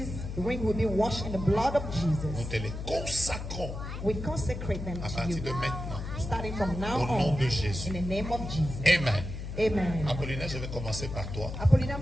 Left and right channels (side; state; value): left; noise; hum, 7 dB below the sound